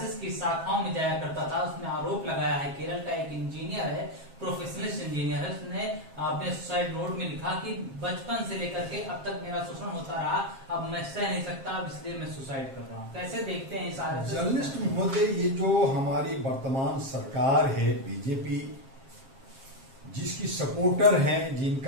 की शाखाओं में जाया करता था। उसने आरोप लगाया है, केरल का एक इंजीनियर है, प्रोफेशनलिस्ट इंजीनियर है, उसने अपने सुसाइड नोट में लिखा कि बचपन से लेकर के अब तक मेरा शोषण होता रहा, अब मैं सह नहीं सकता, अब इसलिए मैं सुसाइड कर रहा हूँ। कैसे देखते हैं इस आरएसएस? जर्नलिस्ट महोदय, ये जो हमारी वर्तमान सरकार है बीजेपी, जिसकी सपोर्टर हैं,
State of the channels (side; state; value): left; late; 7.5 ms